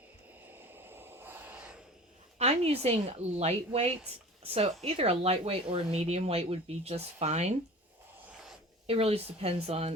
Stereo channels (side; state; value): both; normal; correlation 0.40